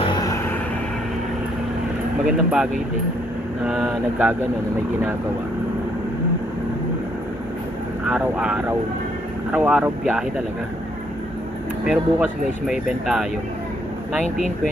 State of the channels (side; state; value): both; normal; correlation 0.70